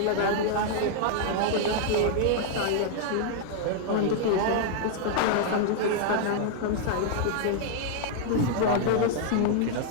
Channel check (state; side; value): different; both; correlation 0.00